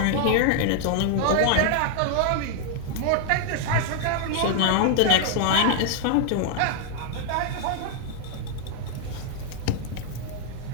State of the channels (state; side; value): different; both; correlation 0.00